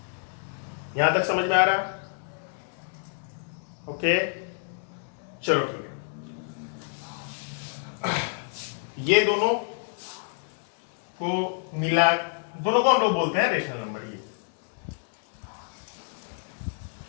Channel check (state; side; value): silent; right; 59 dB below the other